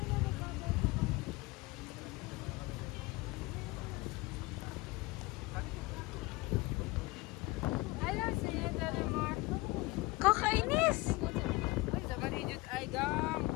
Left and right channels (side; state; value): right; quieter; 22.3 dB